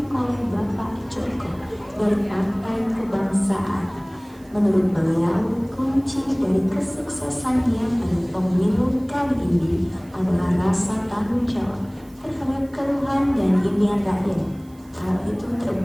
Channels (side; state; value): right; noise; hiss, 29 dB below the sound